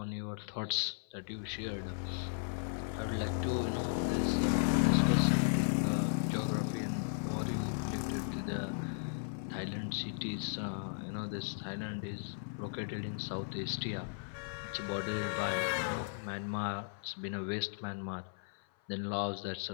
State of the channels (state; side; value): silent; right; 54 dB below the other